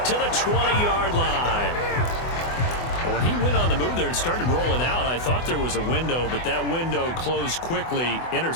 to the 20-yard line. When he went on the move there and started rolling out, I thought there was a window, but that window closed quickly,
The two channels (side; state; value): right; late; 24 ms